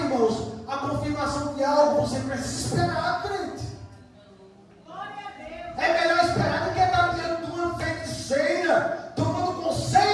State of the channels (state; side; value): identical; both; correlation 1.00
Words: irmãos, a confirmação de algo. Você precisa esperar, crente. É melhor esperar do que estar diante de uma feiticeira, tomando